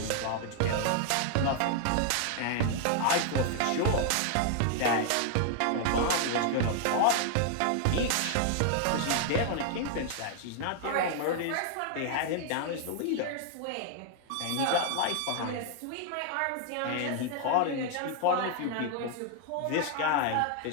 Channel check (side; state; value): both; different; correlation 0.00